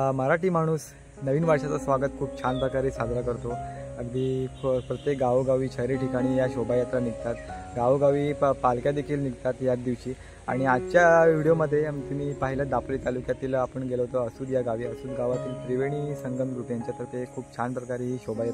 मराठी माणूस नवीन वर्षाचं स्वागत खूप छान प्रकारे साजरा करतो. अगदी प्रत्येक गावोगावी शहरी ठिकाणी या शोभायात्रा निघतात, गावोगावी पालख्या देखील निघतात याच दिवशी. आणि आजच्या व्हिडिओमध्ये तुम्ही पाहिलं दापोली तालुक्यातील आपण गेलो होतो असूद या गावी. असूद गावातील त्रिवेणी संगम ग्रुप यांच्यातर्फे खूप छान प्रकारे ही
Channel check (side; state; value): both; identical; correlation 1.00